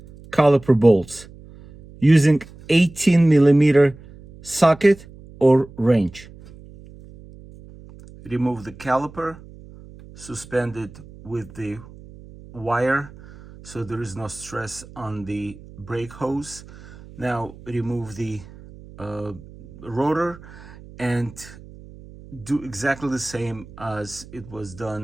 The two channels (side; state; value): right; noise; hum, 20 dB below the sound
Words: caliper bolts using 18mm socket or wrench. Remove the caliper, suspend it with the wire so there is no stress on the brake hose. Now remove the rotor and do exactly the same as it was